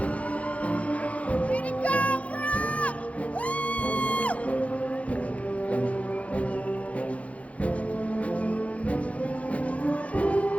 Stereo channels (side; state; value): right; late; 0.065 ms